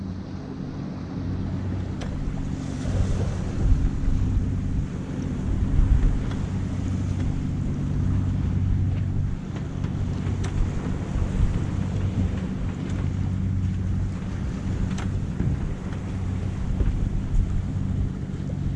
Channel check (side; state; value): both; identical; correlation 1.00